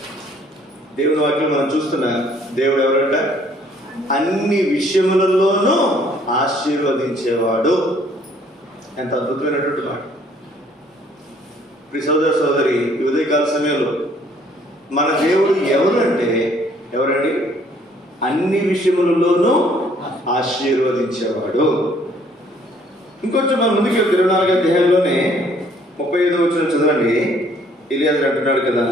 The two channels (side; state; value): both; normal; correlation 0.61